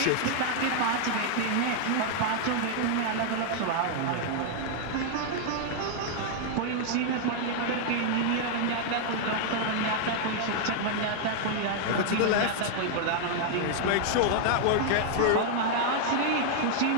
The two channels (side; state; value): both; different; correlation 0.00